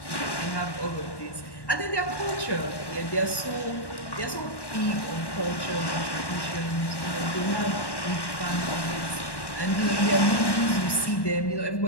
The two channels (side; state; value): right; late; 1.1 ms